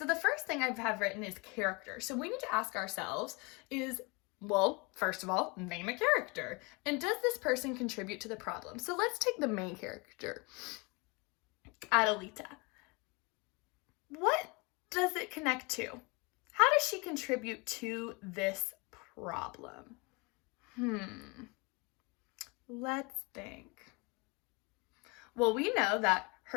the first thing I have written is character. So we need to ask ourselves is, well, first of all, name a character. And does this person contribute to the problem? So let's take the main character, Adelita. What does it connect to? How does she contribute to this problem? Let's think. Well, we know that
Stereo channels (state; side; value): quieter; right; 28.4 dB